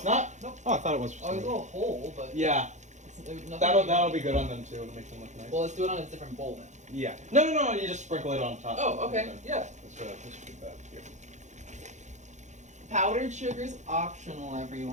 not? Nope. Oh, I thought it was. Oh, there's a little hole, but Yeah. there's nothing. That'll be good on them too. It'll make them look nice. Well, let's do it on a different bowl then. Yeah. No. You just sprinkle it on top. Oh, okay. Yeah. Let's do that here. Powdered sugar's optional,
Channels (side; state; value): left; late; 0.34 ms